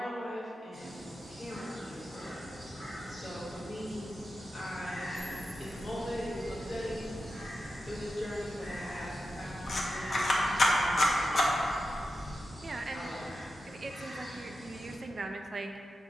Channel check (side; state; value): both; normal; correlation 0.90